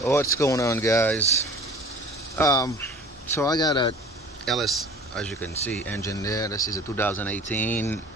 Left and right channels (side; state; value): both; normal; correlation 0.45